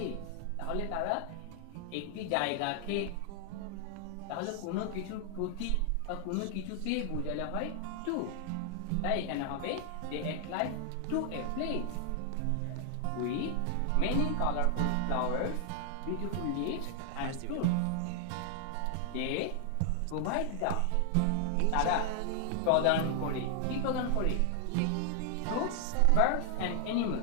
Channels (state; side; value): different; both; correlation 0.00